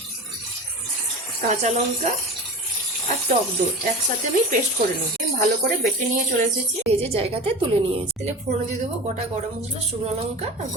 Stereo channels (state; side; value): normal; both; correlation 0.32